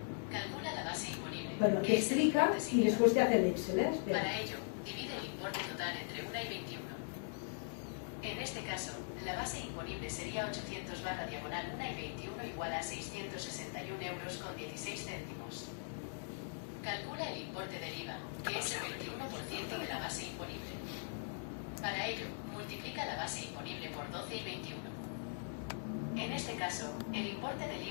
Calcula la base imponible. Bueno, aquí explica y después te hace el Excel, ¿eh? Espera. Para ello, divide el importe total entre 1 y 21. En este caso, la base imponible sería 800 /1 y 21 igual a 661 euros con 16 céntimos. Calcula el importe del IVA, que es el 21% de la base imponible. Para ello, multiplica la base imponible por 12 y 21. En este caso, el importe del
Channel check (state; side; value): silent; right; digital silence